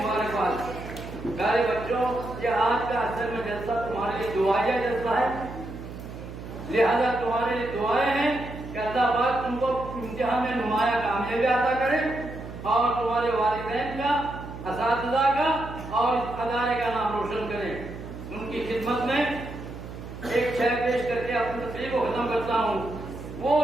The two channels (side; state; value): right; noise; hum, 11 dB below the sound